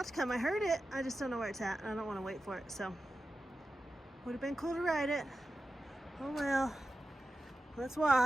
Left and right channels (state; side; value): normal; both; correlation 0.92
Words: to come. I heard it. I just don't know where it's at. I don't want to wait for it. So would have been cool to ride it. Oh well. Let's